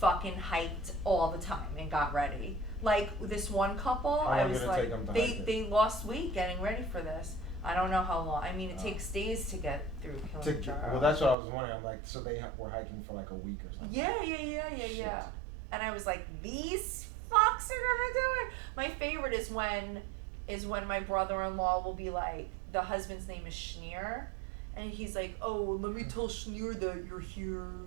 hiked all the time and got ready. Like this one couple, How I long was did it like, take them to hike it? they lost weight getting ready for this. I don't know how long. I mean, it Oh. takes days to get through Kilimanjaro. Well, that's what I was wondering. I'm like, so they were hiking for like a week or something. Yeah. Shit. And I was like, these fucks are gonna do it. My favorite is when my brother-in-law will be like, the husband's name is Schneer, and he's like, oh, let me tell Schneer that you're here,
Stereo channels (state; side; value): drops out; left; at 11.4 s